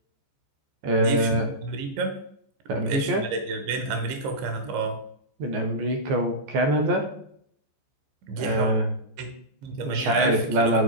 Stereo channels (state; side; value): late; left; 14 ms